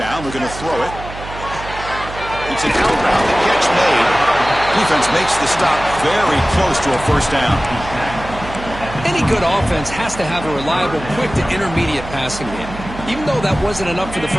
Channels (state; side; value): noise; right; hum, 12 dB below the sound